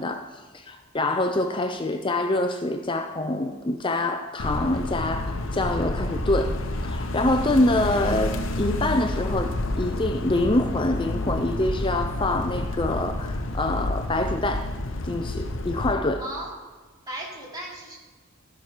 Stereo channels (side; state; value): both; normal; correlation 0.57